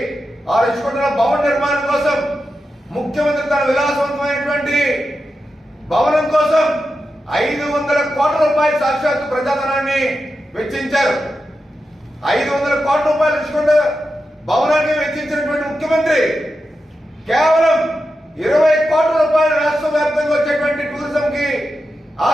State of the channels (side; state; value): both; normal; correlation 0.89